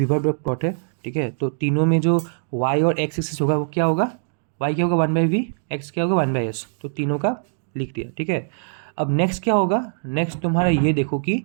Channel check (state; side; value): silent; left; digital silence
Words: प्लॉट है, ठीक है। तो तीनों में जो y और x एक्सिस होगा वो क्या होगा, y क्या होगा 1/v, x क्या होगा 1/s। तो तीनों का लिख दिया, ठीक है। अब नेक्स्ट क्या होगा, नेक्स्ट तुम्हारा ये देखो कि